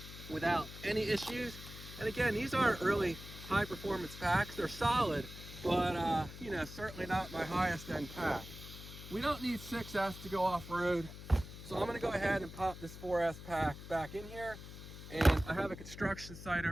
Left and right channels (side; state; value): left; noise; hum, 13 dB below the sound